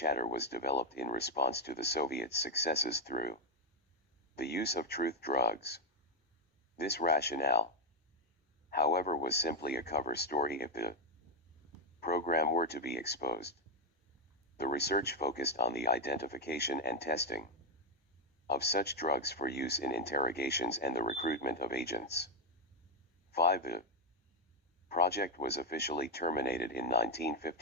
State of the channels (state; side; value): normal; both; correlation 0.02